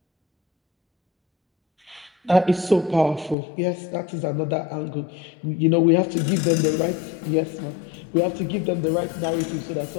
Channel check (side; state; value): right; drops out; at 3.4 s